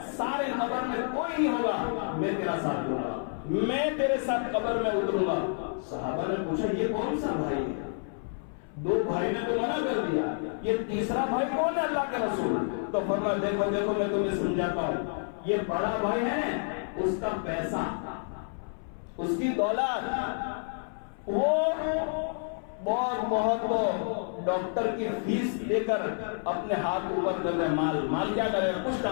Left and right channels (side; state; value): right; silent; 58 dB below the other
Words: سارے قبر میں کوئی نہیں ہوگا، میں تیرا ساتھ دوں گا، میں تیرے ساتھ قبر میں اتروں گا۔ صحابہ نے پوچھا یہ کون سا بھائی ہے؟ دو بھائی نے تو منع کر دیا، یہ تیسرا بھائی کون ہے اللہ کے رسول؟ تو فرمایا دیکھو دیکھو میں تمہیں سمجھاتا ہوں، یہ بڑا بھائی ہے، اس کا پیسہ، اس کی دولت، وہ بہت ڈاکٹر کی فیس لے کر اپنے ہاتھ اوپر کر دے، مال کیا کرے گا؟ کچھ